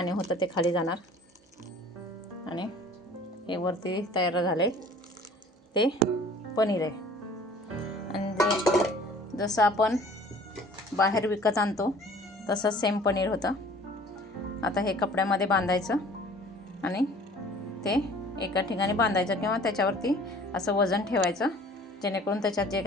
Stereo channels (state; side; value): normal; both; correlation 0.50